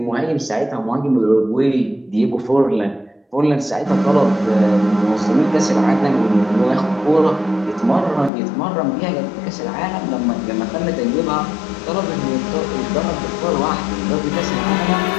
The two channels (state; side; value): drops out; right; at 8.3 s